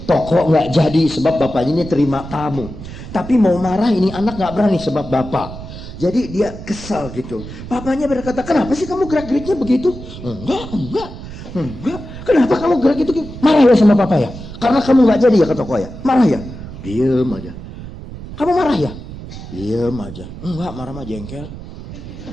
toko nggak jadi. Sebab bapaknya ini terima tamu. Tapi mau marah ini anak nggak berani sebab bapak. Jadi dia kesal gitu. Papanya berkata, kenapa sih kamu gerak-geriknya begitu? Enggak. Kenapa kamu gerak gitu? Marah ya sama papa ya? Karena kamu nggak jadi ya ke toko ya? Marah ya? Diem aja. Kamu marah ya? Diem aja. Enggak, marah mah jengkel.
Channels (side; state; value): right; noise; rumble, 12 dB below the sound